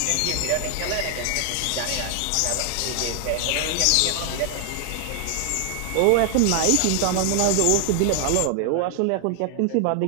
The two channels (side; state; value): both; different; correlation 0.00